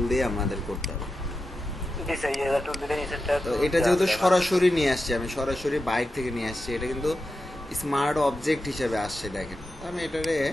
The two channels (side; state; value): both; normal; correlation 0.90